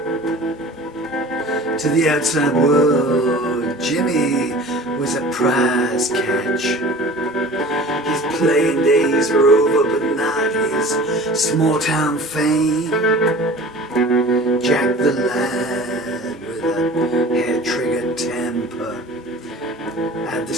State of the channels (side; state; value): both; normal; correlation 0.42